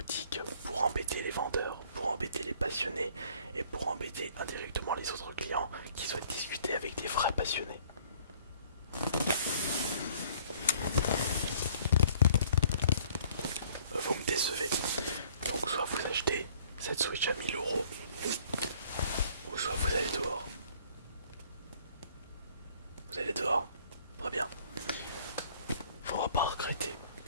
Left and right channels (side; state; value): both; inverted; correlation -0.57